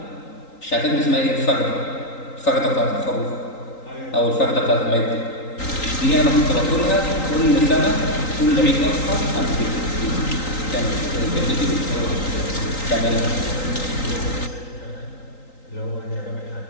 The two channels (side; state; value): right; late; 3.9 ms